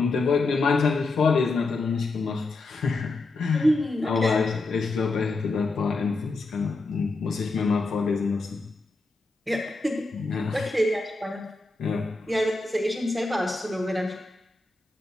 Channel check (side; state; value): right; quieter; 3.3 dB